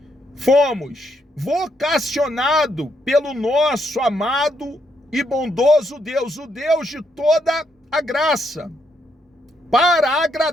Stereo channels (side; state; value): both; normal; correlation 0.76